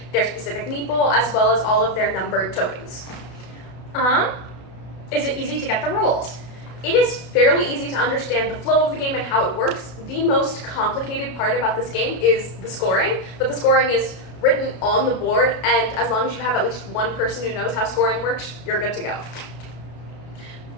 their specific meeple, as well as all of their numbered tokens. Is it easy to get the rules? It is fairly easy to understand the flow of the game and how it works. The most complicated part about this game is the scoring, but the scoring is written on the board, and as long as you have at least one person who knows how scoring works, you're good to go.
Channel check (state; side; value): late; right; 32 ms